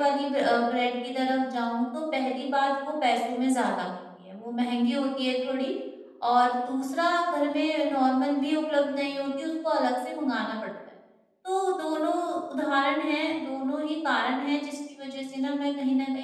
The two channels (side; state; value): both; identical; correlation 1.00